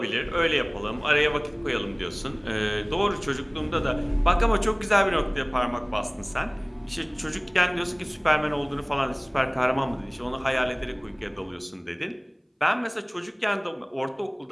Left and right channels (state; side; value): identical; both; correlation 1.00